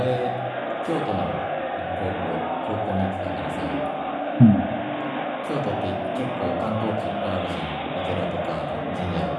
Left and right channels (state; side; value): identical; both; correlation 1.00